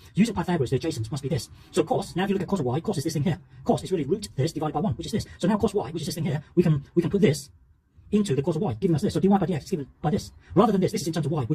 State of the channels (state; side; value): identical; both; correlation 1.00